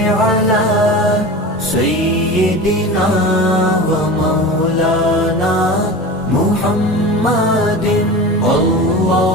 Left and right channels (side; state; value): both; normal; correlation 0.31